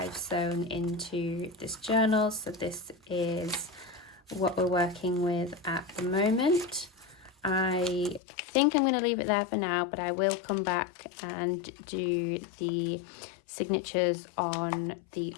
sewn into this journal. So this is what we're working with at the moment. I think I'm going to leave it there for now, but I will come back and do the signatures on the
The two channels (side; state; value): right; drops out; at 8.2 s